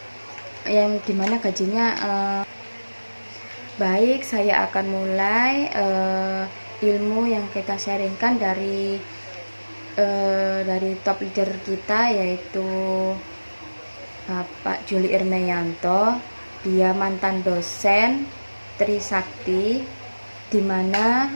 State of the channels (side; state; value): both; inverted; correlation -1.00